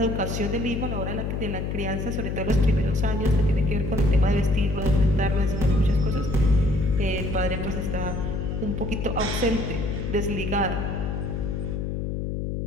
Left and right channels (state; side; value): noise; left; hum, 2 dB below the sound